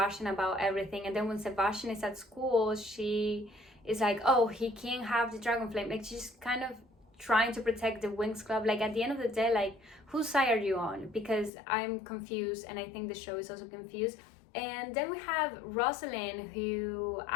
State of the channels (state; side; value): drops out; right; at 11.5 s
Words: about everything. And then when Sebastian is at school, she is like, oh, he can't have the dragon flame. Like, she's kind of trying to protect the Winx Club. Like, at the end of the day, like, whose side are you on? Because I'm confused, and I think the show is also confused. And then we have Rosalind, who